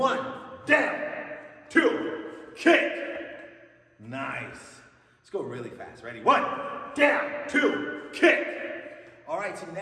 down. 2, kick. Nice. Let's go really fast. Ready? 1, down. 2, kick. All right, so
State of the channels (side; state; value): both; identical; correlation 1.00